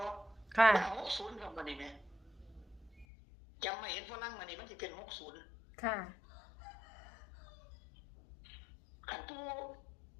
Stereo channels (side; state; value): right; drops out; at 3.1 s